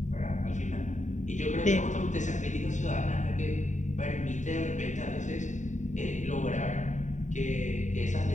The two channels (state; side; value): late; right; 0.35 ms